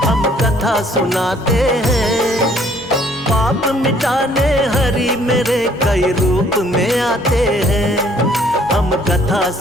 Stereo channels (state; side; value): normal; both; correlation 0.61